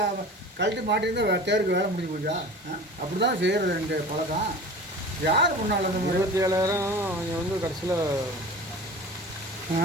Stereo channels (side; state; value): both; normal; correlation 0.38